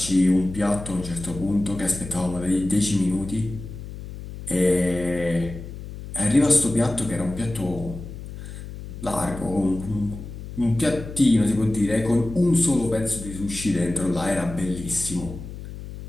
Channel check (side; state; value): left; noise; hum, 11 dB below the sound